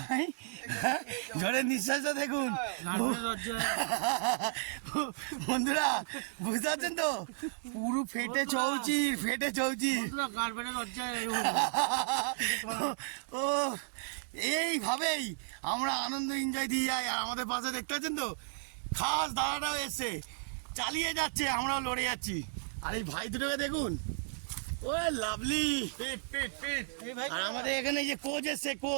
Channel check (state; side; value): silent; left; digital silence